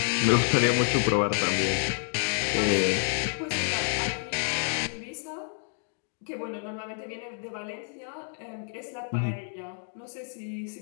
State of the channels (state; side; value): silent; right; 59 dB below the other